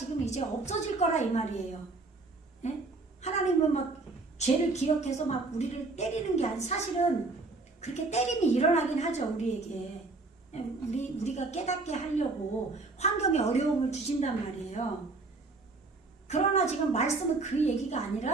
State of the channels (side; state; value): left; quieter; 3.5 dB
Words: 이제 없어질 거라 이 말이에요. 네? 하나님은 막 죄를 기억해서 막 우리를 때리는 게 아니라, 사실은 그렇게 때림이 일어나긴 하죠. 우리에게. 우리가 깨닫게 하려고 환경에 어려움을 주신단 말이에요. 그러나 지금 말씀은 그 얘기가